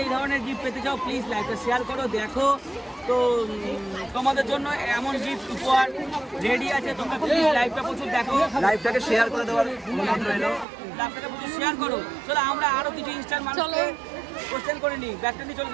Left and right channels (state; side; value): drops out; left; at 10.7 s